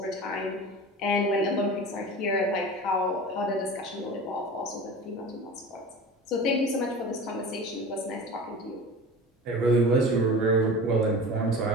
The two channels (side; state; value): both; normal; correlation 0.35